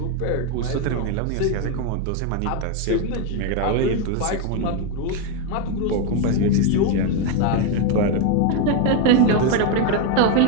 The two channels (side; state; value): both; different; correlation 0.02